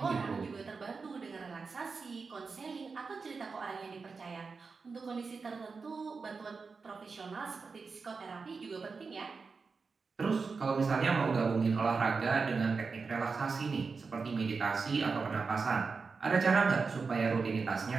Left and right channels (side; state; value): left; quieter; 4.7 dB